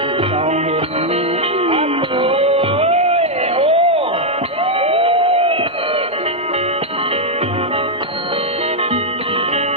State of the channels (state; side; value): normal; both; correlation -0.02